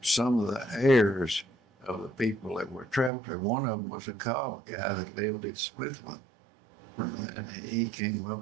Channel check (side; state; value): left; drops out; at 3.1 s